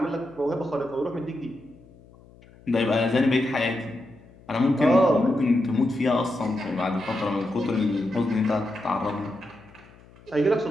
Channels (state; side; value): noise; left; hum, 25 dB below the sound